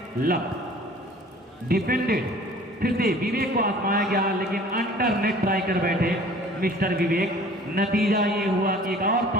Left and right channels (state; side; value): normal; both; correlation 0.49